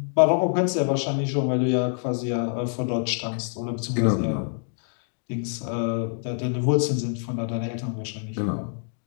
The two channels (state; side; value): silent; right; 61 dB below the other